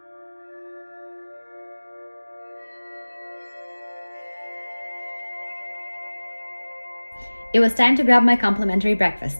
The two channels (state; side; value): inverted; both; correlation -1.00